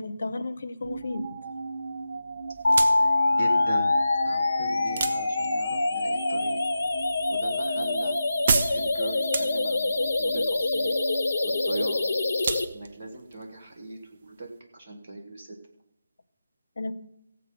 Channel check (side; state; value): both; inverted; correlation -0.92